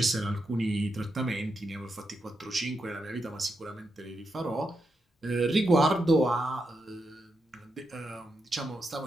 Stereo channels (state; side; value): normal; both; correlation 0.84